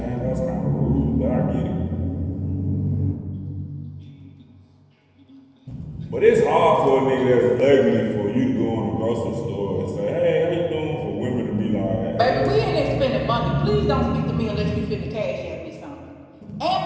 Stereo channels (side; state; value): both; identical; correlation 1.00